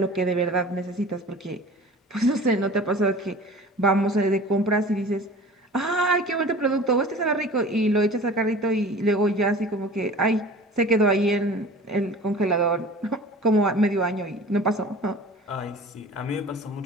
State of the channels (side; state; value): both; normal; correlation 0.42